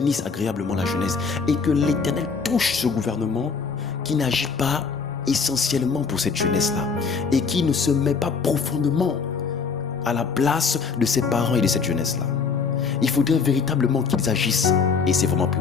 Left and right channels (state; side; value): quieter; right; 5.3 dB